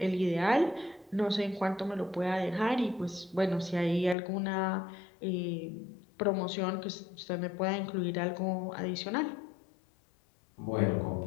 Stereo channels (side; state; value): right; drops out; at 4.2 s